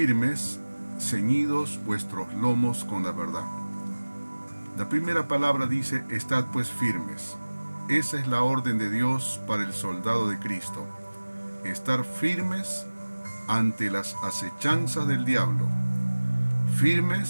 ceñidos vuestros lomos con la verdad. La primera palabra dice: estad pues firmes. Esa es la orden de Dios para el soldado de Cristo. Estar firmes ante las acechanzas del diablo,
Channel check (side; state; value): both; inverted; correlation -1.00